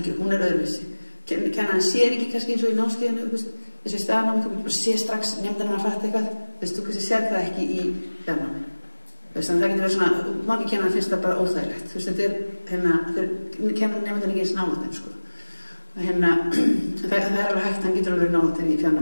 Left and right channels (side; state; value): both; inverted; correlation -1.00